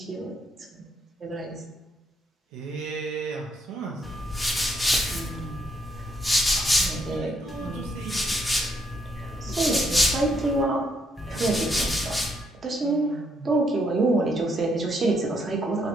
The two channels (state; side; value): normal; both; correlation 0.73